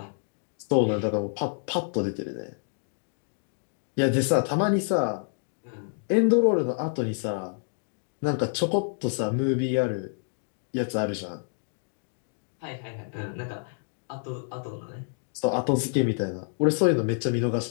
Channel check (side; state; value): right; silent; digital silence